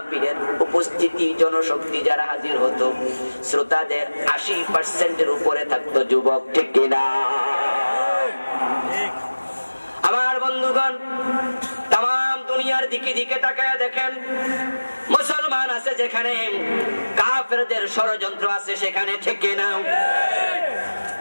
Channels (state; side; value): inverted; both; correlation -1.00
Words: উপস্থিতি জনশক্তি যারা হাজির হতো, শ্রোতাদের 80%-এর উপরে থাকতো যুবক, ঠিক কিনা? আমার বন্ধুগণ, তাম দুনিয়ার দিকে দিকে তাকায় দেখেন, মুসলমান আছে যেখানে, কাফেরদের ষড়যন্ত্র আছে সেখানে, ঠিক কিনা?